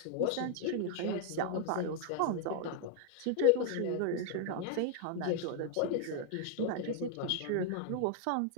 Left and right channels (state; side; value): different; both; correlation 0.00